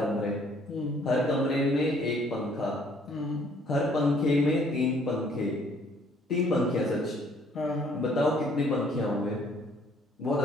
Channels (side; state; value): both; normal; correlation 0.61